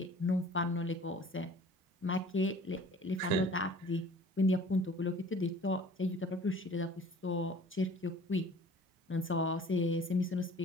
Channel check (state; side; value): normal; both; correlation 0.48